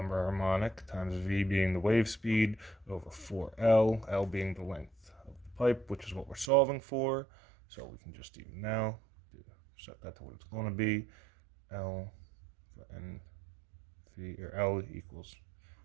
harmonic times V being the wave speed over 4L, L being the length of the pipe, which is what we're solving for. So we can just even now set that to what it's going to be. L for NV, or L equals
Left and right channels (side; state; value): left; drops out; at 6.5 s